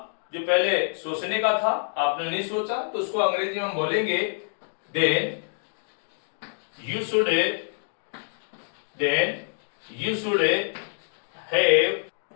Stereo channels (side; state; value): right; silent; digital silence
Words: जो पहले सोचने का था आपने नहीं सोचा, तो उसको अंग्रेजी में हम बोलेंगे then you should have